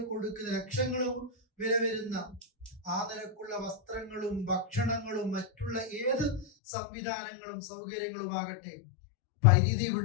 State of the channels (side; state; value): right; drops out; at 6.5 s